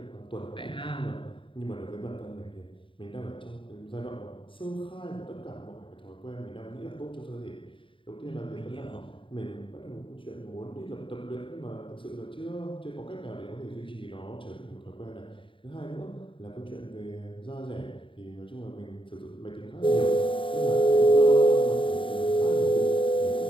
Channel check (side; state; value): right; late; 0.25 ms